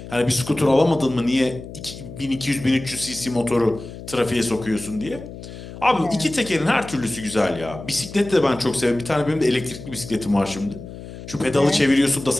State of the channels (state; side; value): noise; left; hum, 13 dB below the sound